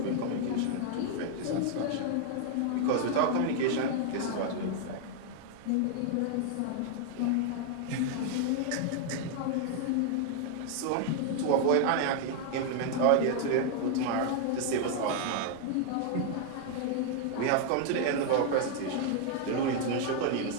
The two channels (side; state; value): both; different; correlation 0.00